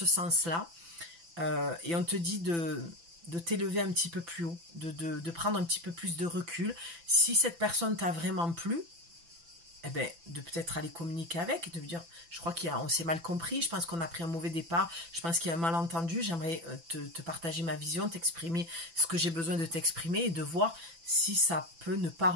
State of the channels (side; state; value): left; late; 6.0 ms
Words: sens-là. Et on te dit de t'élever un petit peu plus haut, de prendre un petit peu plus de recul. Si cette personne t'a vraiment plu, eh ben, de peut-être aller communiquer avec, de lui dire, je crois qu'on s'est mal compris, je pense qu'on a pris un mauvais départ, je pense qu'il y a un malentendu, j'aimerais te partager ma vision, t'exprimer ce que j'ai besoin de t'exprimer et de voir si ça peut ne pas